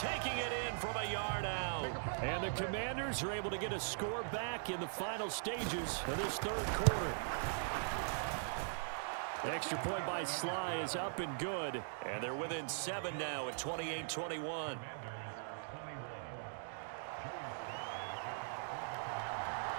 it in from a yard out. And the Commanders are able to get a score back in the final stages of this 3rd quarter. Extra point by Sly is up and good. And they're within 7 now at 28-21.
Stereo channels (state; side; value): silent; left; digital silence